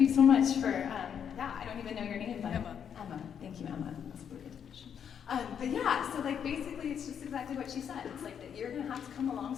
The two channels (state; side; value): quieter; right; 8.1 dB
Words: so much for, I don't even know your name, but Emma. Thank you, Emma. That's a really good definition. But yeah, so like basically it's just exactly what she said. It's like that you're gonna have to come